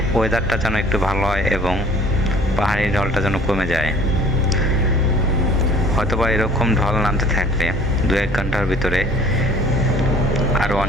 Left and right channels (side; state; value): both; normal; correlation 0.52